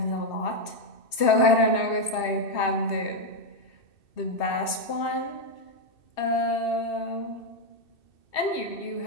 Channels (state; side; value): late; right; 2.7 ms